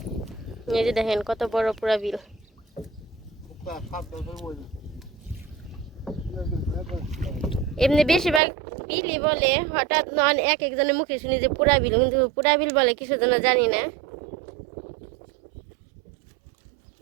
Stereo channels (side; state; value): left; drops out; at 8.4 s